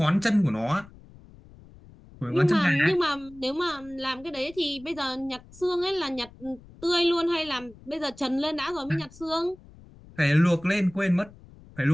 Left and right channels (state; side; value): noise; left; rumble, 22 dB below the sound